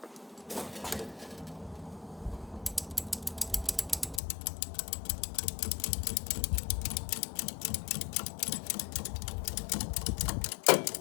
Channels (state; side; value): drops out; right; at 4.2 s